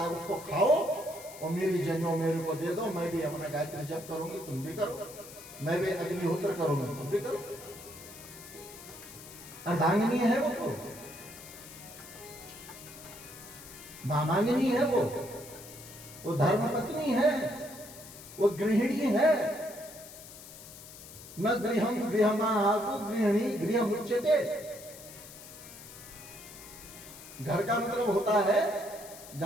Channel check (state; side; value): noise; left; hiss, 16 dB below the sound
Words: उसको खाओ, और मेरी जनेऊ मेरे को दे दो। मैं भी अपना गायत्री जप करूंगी, तुम भी करो। मैं भी अग्निहोत्र करूंगी, तुम भी करो। अर्धांगिनी है वो तो, मामांगिनी है, वो धर्म पत्नी है, वो गृहिणी है। न गृहम गृहमाहु गृहिणी गृह मुच्यते। घर का मतलब होता है